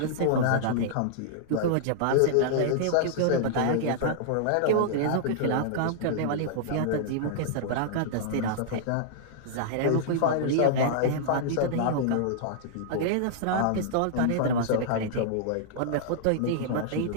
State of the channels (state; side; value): different; both; correlation -0.02